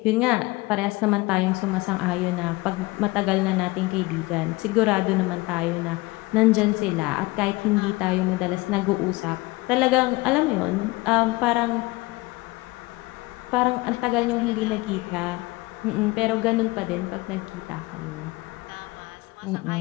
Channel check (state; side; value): quieter; right; 22.1 dB